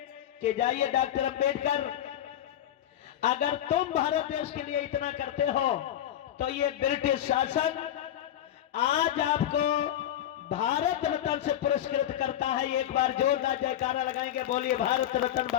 कि जाइए डॉक्टर अंबेडकर, अगर तुम भारत देश के लिए इतना करते हो तो ये ब्रिटिश शासन आज आपको भारत रत्न से पुरस्कृत करता है। एक बार जोरदार जयकारा लगाएंगे, बोलिए भारत रत्न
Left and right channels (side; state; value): right; quieter; 11.4 dB